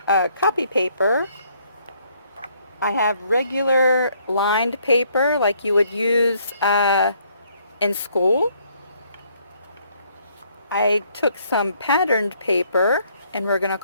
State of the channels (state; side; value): inverted; both; correlation -0.67